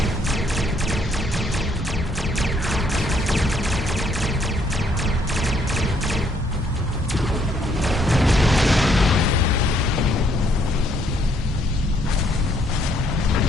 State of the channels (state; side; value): normal; both; correlation 0.68